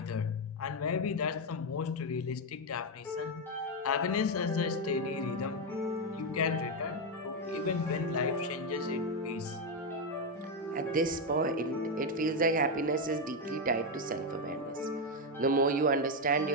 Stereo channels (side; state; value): both; normal; correlation 0.05